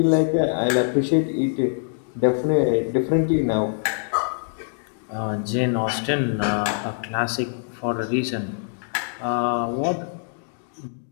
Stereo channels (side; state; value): right; silent; digital silence